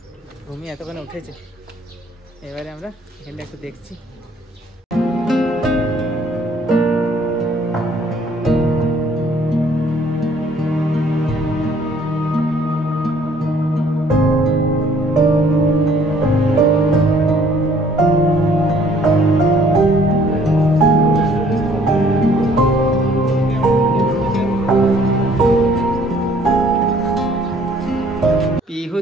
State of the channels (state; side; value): normal; both; correlation 0.59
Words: ঘুমিয়ে এতক্ষণে উঠেছে। এবারে আমরা এখানটা একটু দেখছি। পিহু